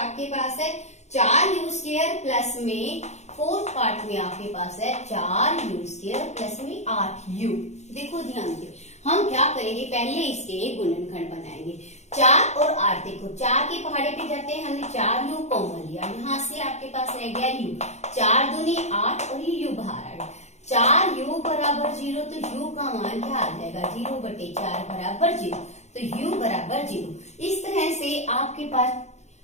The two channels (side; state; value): right; late; 0.33 ms